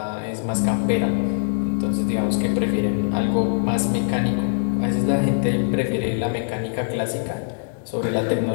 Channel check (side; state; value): right; silent; digital silence